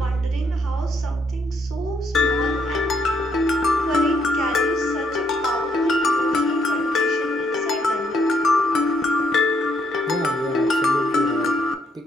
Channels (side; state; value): both; normal; correlation 0.73